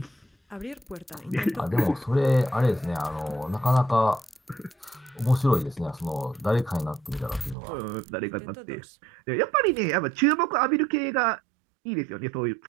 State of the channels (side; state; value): left; drops out; at 7.6 s